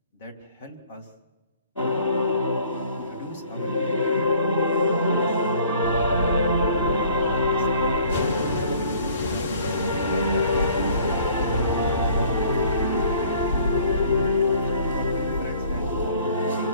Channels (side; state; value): both; inverted; correlation -0.55